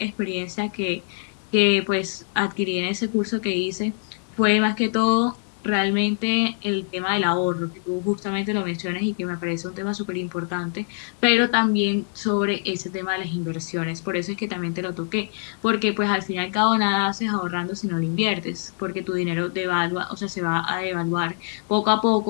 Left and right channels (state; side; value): silent; right; 59 dB below the other